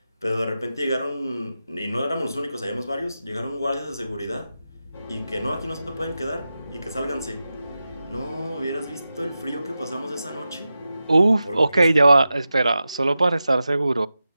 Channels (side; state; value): both; inverted; correlation -0.92